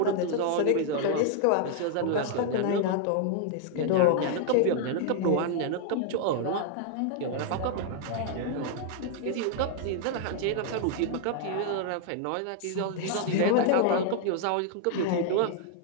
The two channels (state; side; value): different; both; correlation 0.00